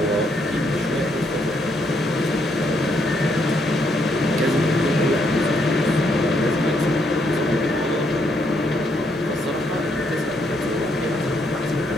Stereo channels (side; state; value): both; normal; correlation 0.74